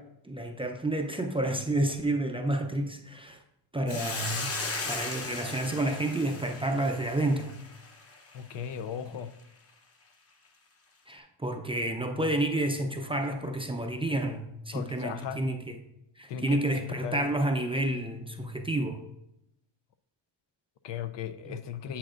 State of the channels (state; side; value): normal; both; correlation 0.51